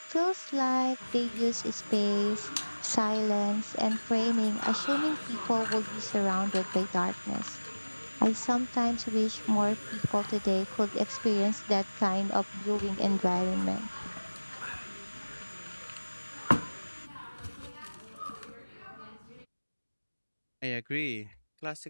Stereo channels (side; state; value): both; inverted; correlation -1.00